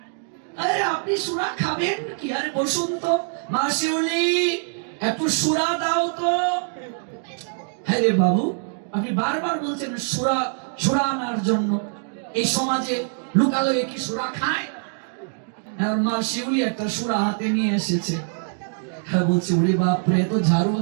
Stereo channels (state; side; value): silent; left; 61 dB below the other